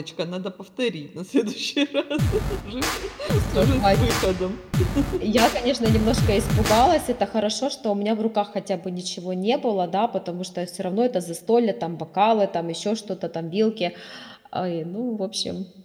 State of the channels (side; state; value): both; identical; correlation 1.00